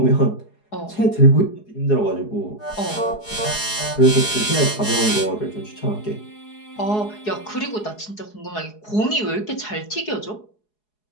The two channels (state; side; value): late; right; 4.8 ms